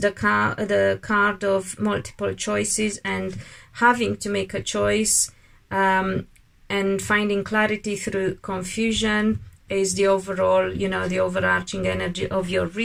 card of multiple choices and having to make a choice, and finding clarity through confusion is the overall, you know, the overarching energy of your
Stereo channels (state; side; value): identical; both; correlation 1.00